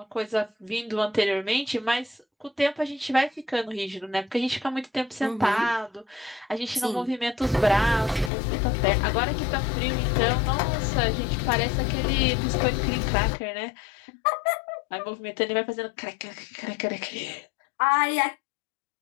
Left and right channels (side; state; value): right; drops out; at 8.3 s